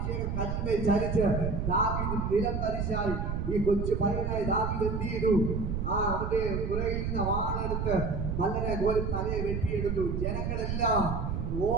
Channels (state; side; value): noise; right; rumble, 1 dB below the sound